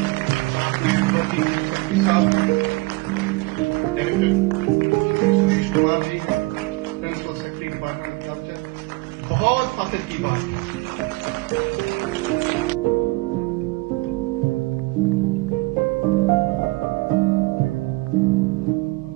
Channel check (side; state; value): left; quieter; 24.2 dB